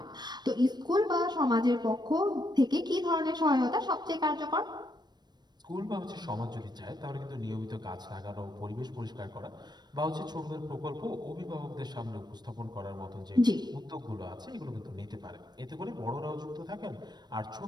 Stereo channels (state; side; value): late; left; 0.20 ms